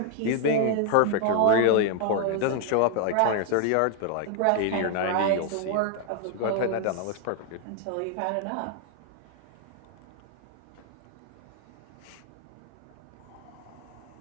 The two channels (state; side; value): different; both; correlation 0.00